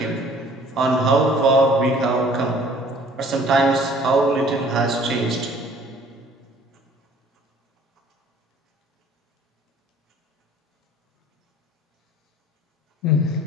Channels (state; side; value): normal; both; correlation 0.53